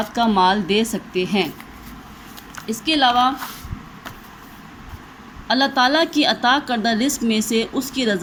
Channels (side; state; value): both; identical; correlation 1.00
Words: کا مال دے سکتے ہیں۔ اس کے علاوہ اللہ تعالیٰ کی عطا کردہ رزق میں سے اس کی